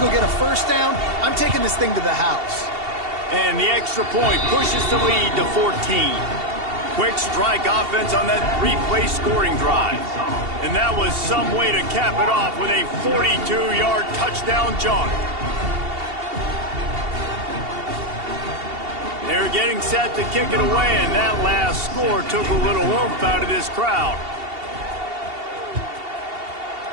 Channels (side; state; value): left; late; 2.7 ms